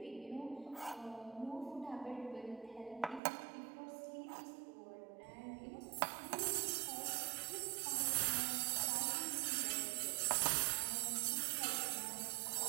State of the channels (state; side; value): drops out; left; at 3.2 s